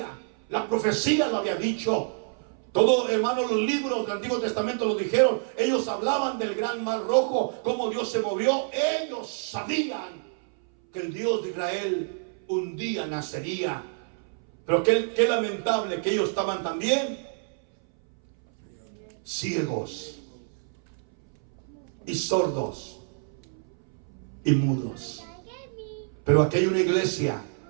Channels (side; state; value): left; silent; 60 dB below the other